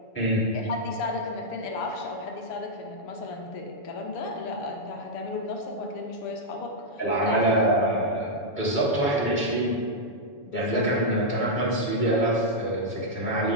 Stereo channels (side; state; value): right; late; 7.0 ms